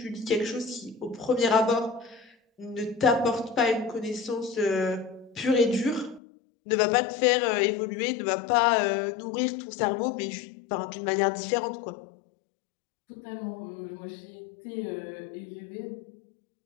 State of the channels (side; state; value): right; drops out; at 6.2 s